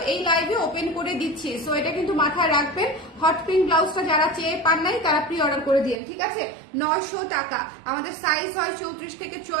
এই লাইভে ওপেন করে দিচ্ছি, সো এটা কিন্তু মাথায় রাখবেন। হট পিঙ্ক ব্লাউজটা যারা চেয়ে পান নাই তারা প্রি অর্ডার করে দিন, ঠিক আছে? 900 টাকা। আমাদের সাইজ হয় 34 থেকে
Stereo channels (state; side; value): drops out; left; at 6.0 s